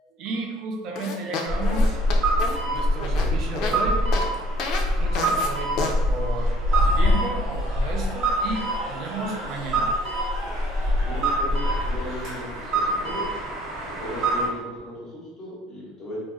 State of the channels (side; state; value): both; normal; correlation 0.60